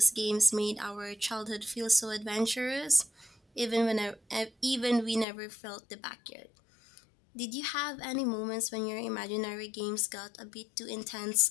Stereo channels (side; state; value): right; drops out; at 5.2 s